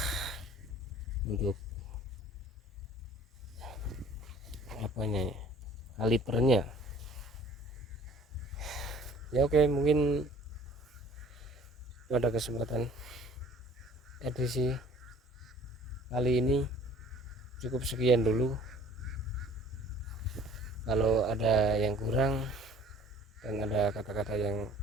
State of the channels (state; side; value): normal; both; correlation 0.51